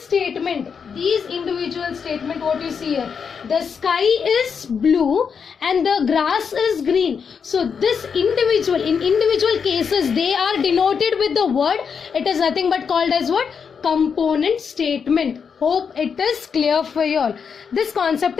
what you see here, the sky is blue and the grass is green. So this individual, in individual cases, they are denoted with the word. It is nothing but called as what? Component statement. Hope it is clear for you all. This concept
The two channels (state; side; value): quieter; right; 6.4 dB